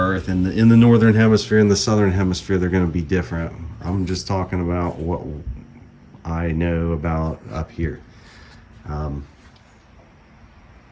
in the northern hemisphere and the southern hemisphere, they're going to be different. I'm just talking about what I know about up here.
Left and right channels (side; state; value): both; identical; correlation 1.00